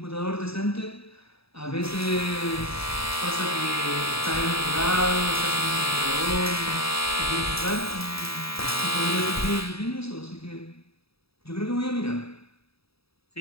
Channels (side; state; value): right; late; 0.77 ms